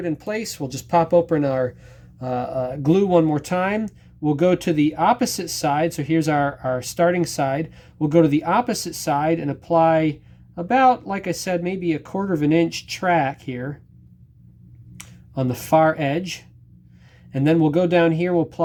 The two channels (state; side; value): identical; both; correlation 1.00